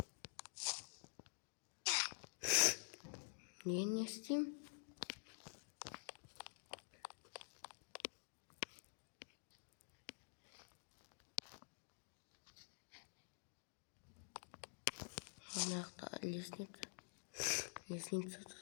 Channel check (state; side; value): silent; right; digital silence